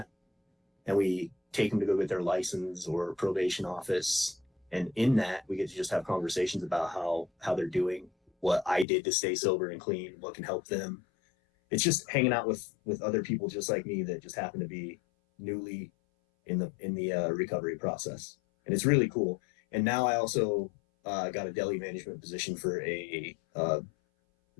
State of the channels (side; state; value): right; drops out; at 8.8 s